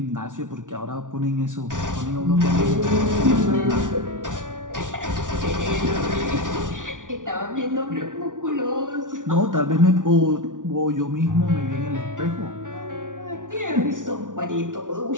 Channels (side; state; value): left; late; 0.88 ms